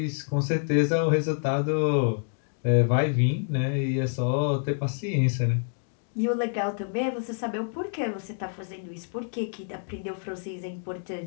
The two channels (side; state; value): right; silent; digital silence